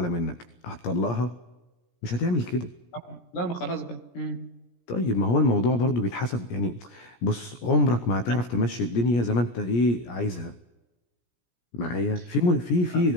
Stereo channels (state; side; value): late; right; 17 ms